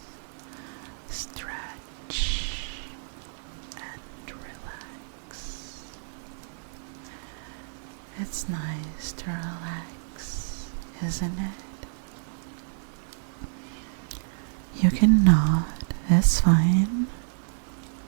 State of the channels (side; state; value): left; silent; digital silence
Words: Stretch and relax. It's nice to relax, isn't it? You can nod, it's fine.